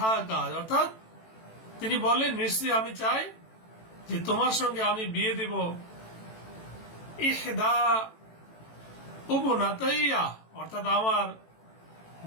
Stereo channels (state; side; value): late; right; 18 ms